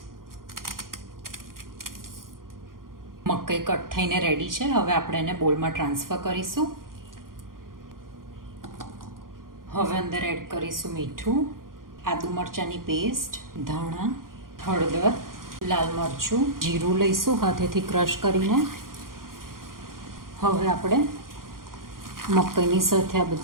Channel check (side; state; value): left; late; 0.91 ms